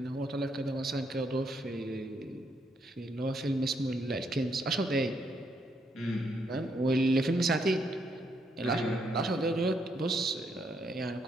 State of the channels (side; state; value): both; normal; correlation 0.75